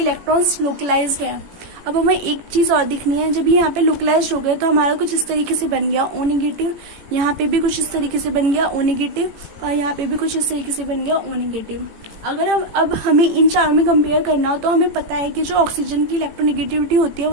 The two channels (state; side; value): late; left; 18 ms